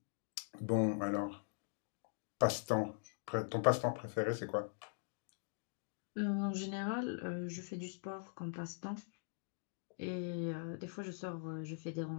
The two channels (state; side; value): silent; right; digital silence